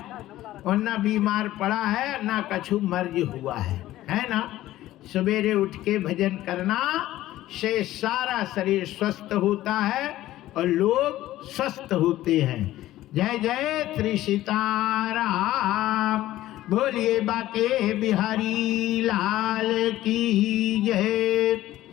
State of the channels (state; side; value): quieter; right; 15.0 dB